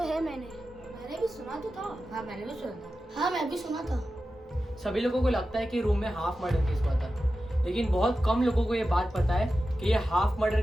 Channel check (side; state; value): both; normal; correlation 0.93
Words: है मैंने भी सुना तो था। हाँ मैंने भी सुना था। हाँ मैं भी सुना था। सभी लोगों को लगता है कि रूम में हाफ मर्डर केस हुआ था, लेकिन बहुत कम लोगों को ये बात पता है कि ये हाफ मर्डर